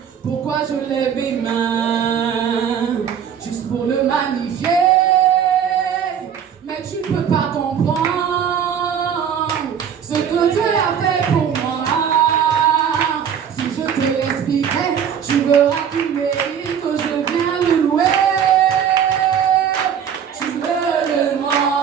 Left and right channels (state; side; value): quieter; left; 8.2 dB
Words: pourquoi je lève mes mains, juste pour le magnifier. Mais tu peux pas comprendre ce que Dieu a fait pour moi. Si je te l'expliquais, tu verras qu'il mérite que je vienne le louer. Tu me demandes